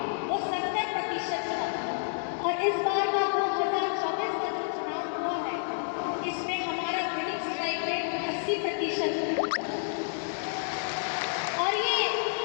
वो 70% था, और इस बार का 2024 का जो चुनाव हुआ है इसमें हमारा विनिंग स्ट्राइक रेट 80% है। और ये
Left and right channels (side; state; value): right; silent; digital silence